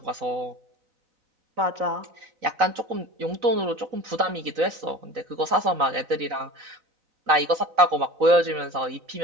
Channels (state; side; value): late; left; 4.0 ms